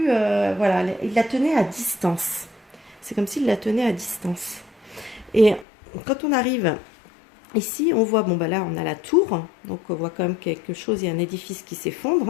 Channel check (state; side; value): drops out; right; at 5.7 s